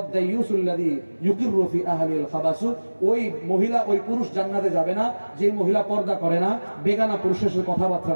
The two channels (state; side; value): inverted; both; correlation -1.00